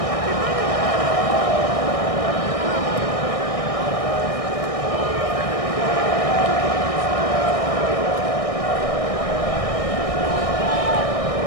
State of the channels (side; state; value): right; late; 1.6 ms